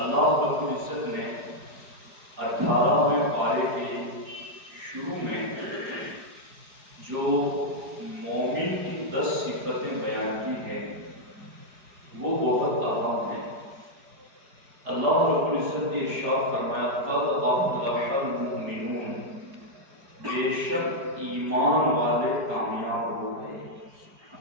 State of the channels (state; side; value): late; left; 4.9 ms